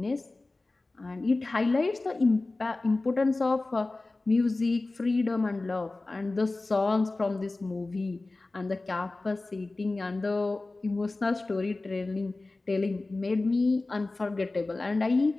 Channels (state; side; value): quieter; right; 3.2 dB